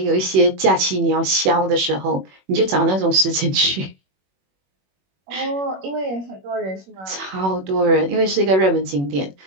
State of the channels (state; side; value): late; left; 21 ms